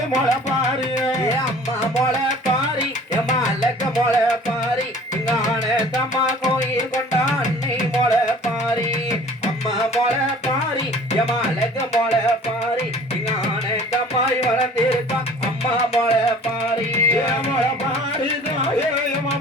மொள பாரு அம்மா மொள பாரி எம்மா அழக மொள பாரி இங்க ஆனந்தம்மா கோயில் கொண்டா அன்னை மொள பாரி அம்மா மொள பாரி எம்மா அழக மொள பாரி இங்க ஆனந்தம்மாய் வளர்ந்திருக்கா அம்மா மொள பாரி மொள பாரி தாயே எம்மா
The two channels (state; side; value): normal; both; correlation 0.48